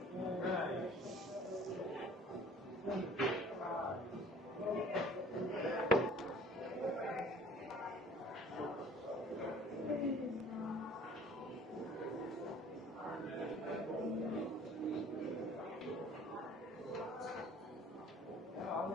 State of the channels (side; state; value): both; normal; correlation 0.50